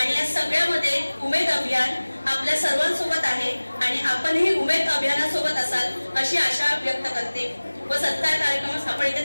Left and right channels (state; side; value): inverted; both; correlation -1.00